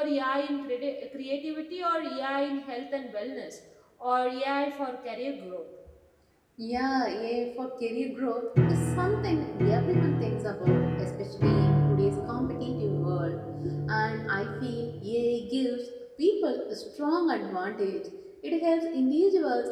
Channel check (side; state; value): both; identical; correlation 1.00